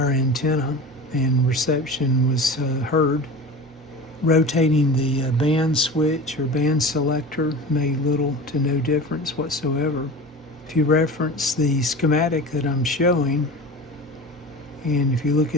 antenna, and reception was heard. Rotating the band switch or band selector made little to no difference whatsoever. If you reference the schematic that I'm showing, and if you look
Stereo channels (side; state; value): both; normal; correlation 0.33